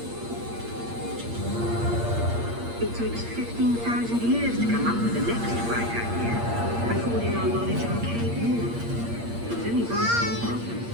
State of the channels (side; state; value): left; late; 8.6 ms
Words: It takes 15,000 years to come up with the next bright idea, recording our knowledge on cave walls. There was only one small problem.